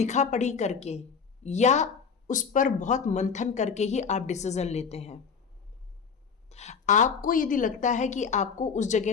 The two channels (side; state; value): right; quieter; 6.1 dB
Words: पढ़ी करके या उस पर बहुत मंथन करके ही आप डिसीजन लेते हैं। आपको यदि लगता है कि आपको उस जगह